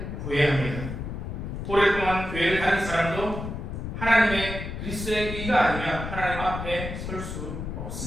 구해야 합니다. 오랫동안 교회를 다닌 사람도 하나님의 그리스도의 의가 아니면 하나님 앞에 설 수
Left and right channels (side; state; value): left; noise; rumble, 6 dB below the sound